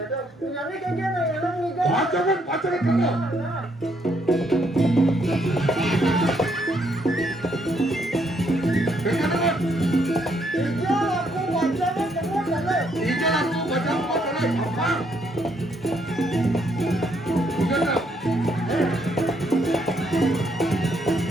tuh, punya ni kan dia melon ni kan. Pacaran kakak. Nah. Dengar. Iya, aku wajahnya semua kan. Ijal aku baca pacaran apa? Jigedel.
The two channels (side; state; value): both; normal; correlation 0.72